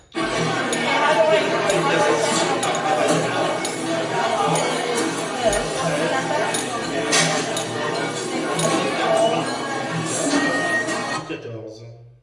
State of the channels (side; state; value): both; identical; correlation 1.00